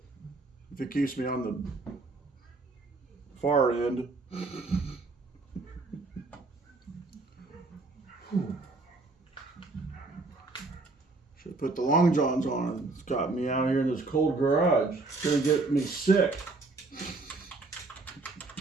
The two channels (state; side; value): quieter; left; 3.5 dB